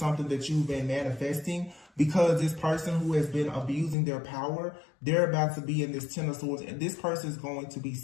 that you've been manifesting, because this person who has been abusing their power, they're about to be in this Ten of Swords, and this person is going to be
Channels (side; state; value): right; drops out; at 4.0 s